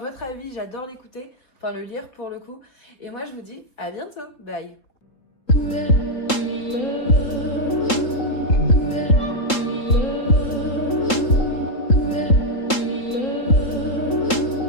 avis, j'adore l'écouter, enfin le lire pour le coup. Et moi je vous dis à bientôt, bye.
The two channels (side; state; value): right; late; 3.7 ms